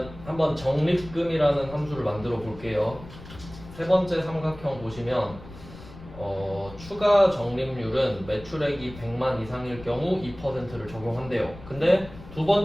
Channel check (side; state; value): left; noise; rumble, 16 dB below the sound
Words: 한번 적립금이라는 함수를 만들어 볼게요. 세 번째 삼각형 보시면 추가 적립률은 매출액이 100만 이상일 경우 2%를 적용한대요. 근데 두